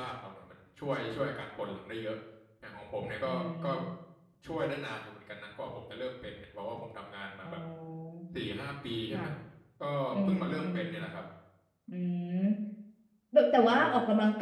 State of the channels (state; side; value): identical; both; correlation 1.00